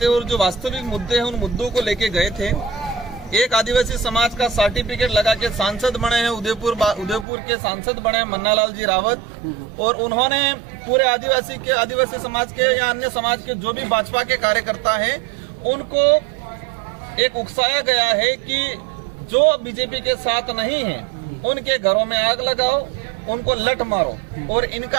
और जो वास्तविक मुद्दे हैं उन मुद्दों को लेके गए थे। एक आदिवासी समाज का सर्टिफिकेट लगा के सांसद बने हैं, उदयपुर के सांसद बने हैं मन्नालाल जी रावत, और उन्होंने पूरे आदिवासी समाज के या अन्य समाज के जो भी भाजपा के कार्यकर्ता हैं उनको एक उकसाया गया है कि जो बीजेपी के साथ नहीं है उनके घरों में आग लगाओ, उनको लठ मारो, और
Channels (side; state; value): left; drops out; at 7.2 s